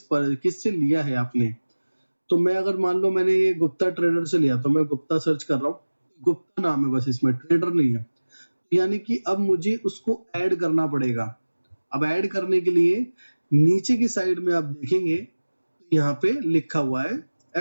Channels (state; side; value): inverted; both; correlation -1.00